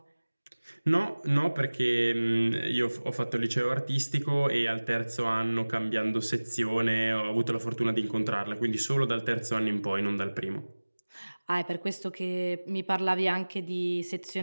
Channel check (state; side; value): inverted; both; correlation -1.00